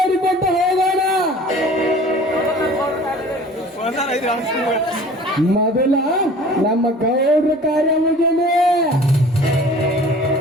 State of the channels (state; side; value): normal; both; correlation 0.46